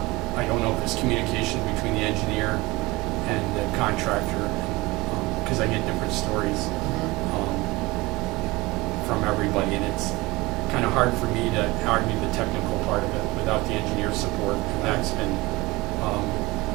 I don't know if there's communication between the engineer and the contractor, because I get different stories from everybody, and it's kind of hard for me to argue the technical part of it without the engineer's support, and that's been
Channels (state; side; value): quieter; left; 21.9 dB